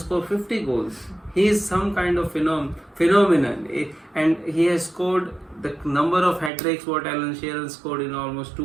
50 goals. He is some kind of phenomenon, and he has scored the number of hat-tricks what Alan Shearer scored in almost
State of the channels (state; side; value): drops out; left; at 6.5 s